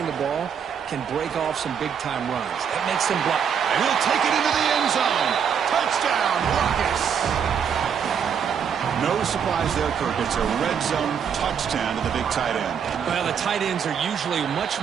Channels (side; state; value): left; quieter; 7.5 dB